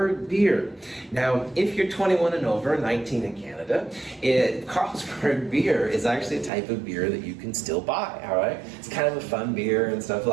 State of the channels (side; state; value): left; drops out; at 6.5 s